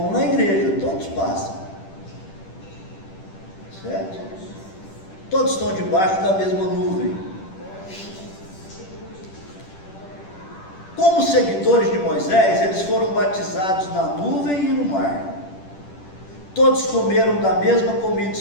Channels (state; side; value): late; right; 10 ms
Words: na igreja, todos passam, certo? Todos estão debaixo da mesma nuvem. Como seguidores de Moisés, eles foram batizados na nuvem e no mar. Todos comeram da mesma comida